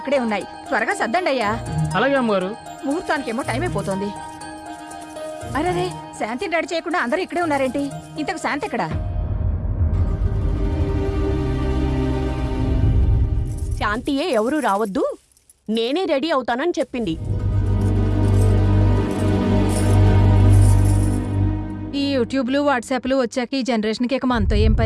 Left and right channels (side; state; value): both; identical; correlation 1.00